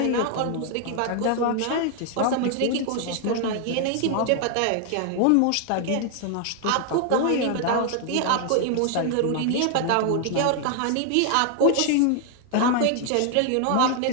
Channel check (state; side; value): different; both; correlation 0.00